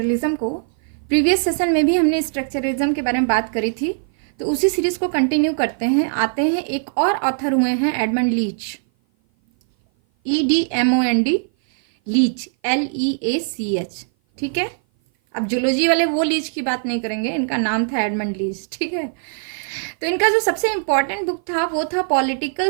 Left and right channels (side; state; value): left; silent; 56 dB below the other